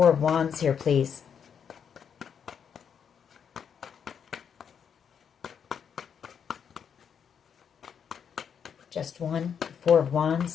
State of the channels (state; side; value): quieter; right; 7.5 dB